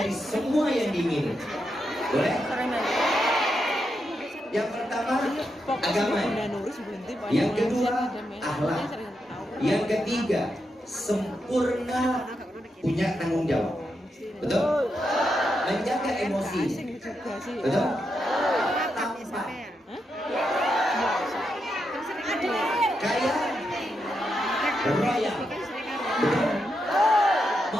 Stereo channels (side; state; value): both; normal; correlation 0.84